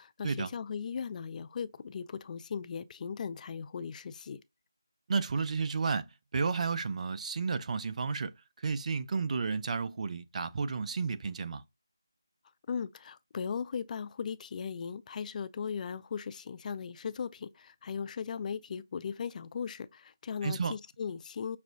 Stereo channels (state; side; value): inverted; both; correlation -0.78